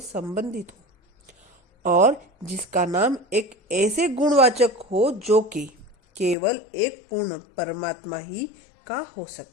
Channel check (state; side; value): drops out; right; at 6.4 s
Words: संबंधित हो और जिसका नाम एक ऐसे गुणवाचक हो जो कि केवल एक पूर्ण परमात्मा ही का हो